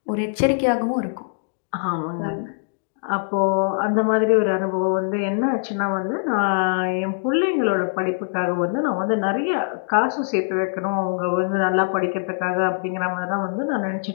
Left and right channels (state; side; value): silent; right; digital silence